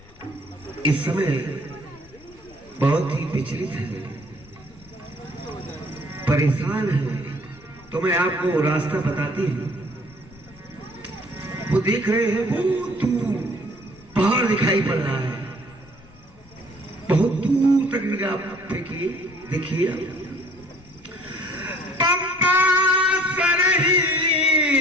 इस समय बहुत ही विचलित हैं, परेशान हैं, तो मैं आपको रास्ता बताती हूँ। वो देख रहे हैं, बहुत दूर पहाड़ दिखाई पड़ रहा है, बहुत दूर तक निगाह फेंकिए, देखिए। पंपा सरही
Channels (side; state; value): left; noise; rumble, 25 dB below the sound